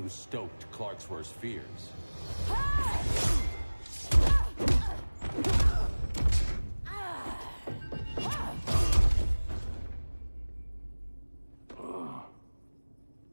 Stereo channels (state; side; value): inverted; both; correlation -1.00